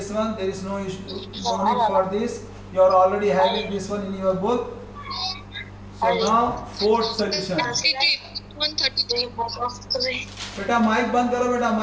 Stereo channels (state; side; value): identical; both; correlation 1.00